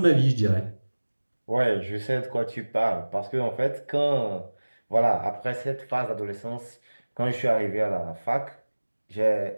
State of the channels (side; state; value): both; inverted; correlation -1.00